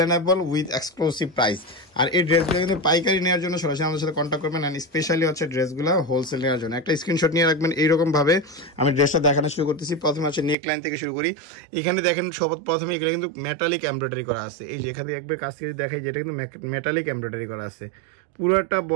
উইথ এক্সক্লুসিভ প্রাইস। আর এই ড্রেসগুলো কিন্তু পাইকারি নেওয়ার জন্য সরাসরি আমাদের সাথে কন্ট্যাক্ট করবেন। অ্যান্ড স্পেশালি হচ্ছে ড্রেসগুলো হোলসেল নেওয়ার জন্য একটা স্ক্রিনশট নিয়ে রাখবেন। এইরকম ভাবে আমি ড্রেসটা দেখানো শুরু করতেছি। প্রথমে হচ্ছে নেক লাইন থেকে শুরু করি। এখানে দেখেন প্রথমে এগুলো কিন্তু মেটালিক এমব্রয়ডারি করা আছে। এই যে এখানে একবার কাছ থেকে দেখাই, যেটা কিন্তু মেটালিক এমব্রয়ডারি করা আছে পুরোটা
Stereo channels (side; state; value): left; drops out; at 10.6 s